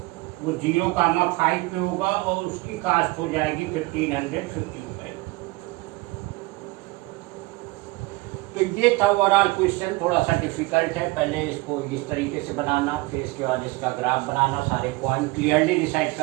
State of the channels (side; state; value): left; quieter; 22.2 dB